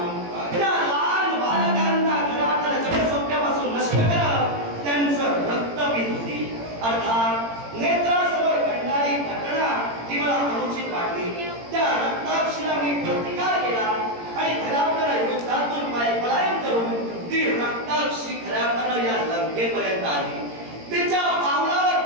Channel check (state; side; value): late; left; 18 ms